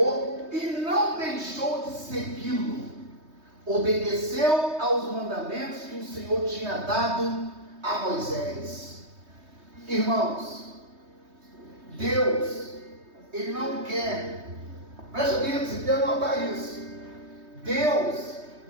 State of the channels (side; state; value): left; late; 3.2 ms